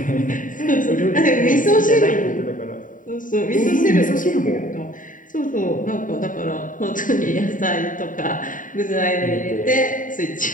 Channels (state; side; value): late; right; 0.38 ms